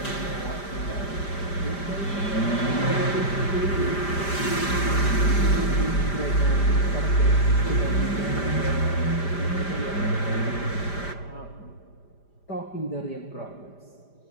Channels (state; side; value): late; right; 5.0 ms